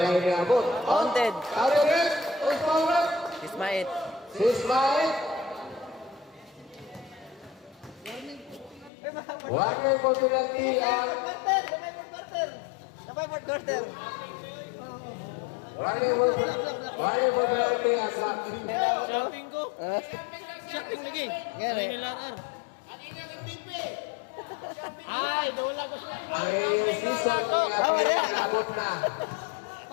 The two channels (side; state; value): right; drops out; at 8.9 s